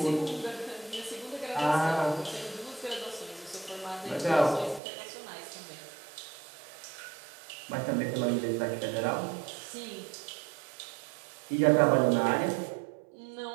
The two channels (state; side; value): drops out; left; at 4.8 s